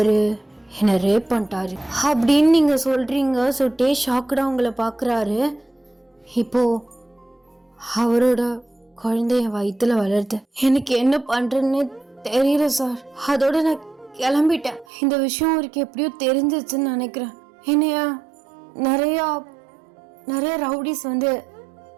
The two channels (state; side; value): drops out; left; at 14.9 s